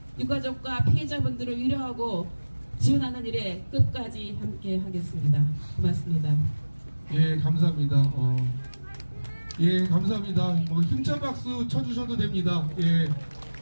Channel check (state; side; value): inverted; both; correlation -1.00